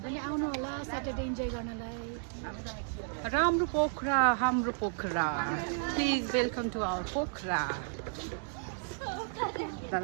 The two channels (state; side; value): silent; left; digital silence